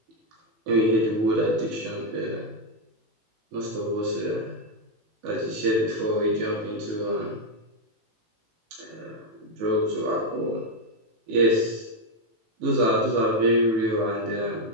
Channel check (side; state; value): left; late; 18 ms